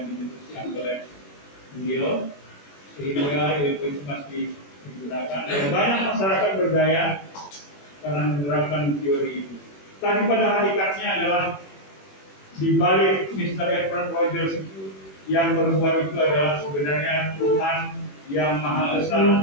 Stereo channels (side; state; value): right; late; 21 ms